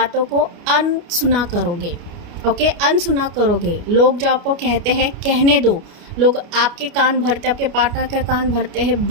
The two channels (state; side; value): late; left; 29 ms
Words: को अनसुना करोगे, ओके, अनसुना करोगे। लोग जो आपको कहते हैं कहने दो, लोग आपके कान भरते, आपके पार्टनर के कान भरते हैं,